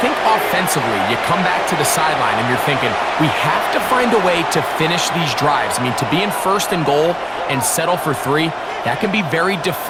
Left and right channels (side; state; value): both; identical; correlation 1.00